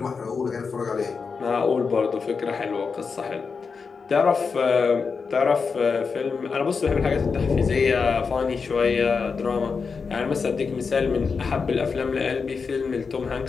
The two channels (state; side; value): quieter; right; 5.2 dB